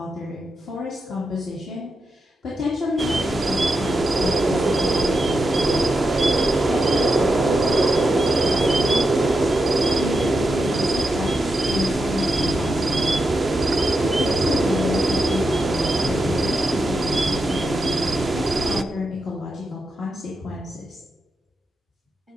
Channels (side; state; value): both; normal; correlation 0.87